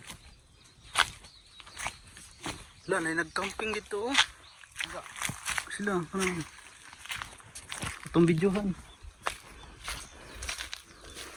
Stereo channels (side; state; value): both; identical; correlation 1.00